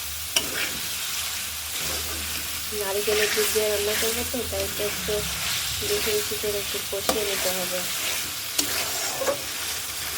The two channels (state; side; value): identical; both; correlation 1.00